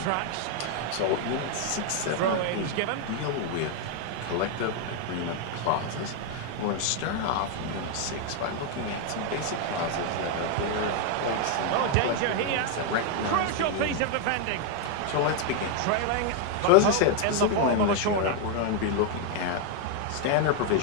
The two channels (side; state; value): both; different; correlation 0.01